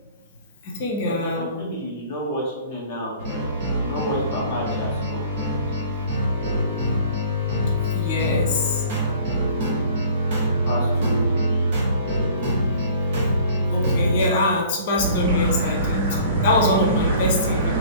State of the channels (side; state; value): both; inverted; correlation -0.50